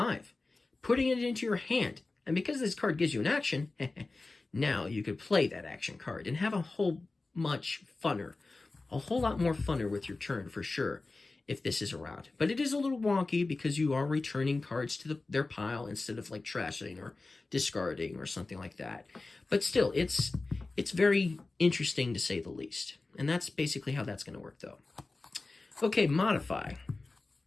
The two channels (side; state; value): right; quieter; 3.4 dB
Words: putting it into your hand. And because this card gives you an action, now you could play that action card and have a whole lot more funner with your turn for sure if this is around. But it is a little wonky because you are returning cards to their pile instead of like trashing or discarding or something like that. But still, it's very interesting to say the least. And that's basically how that's going to work though. Okay, modify.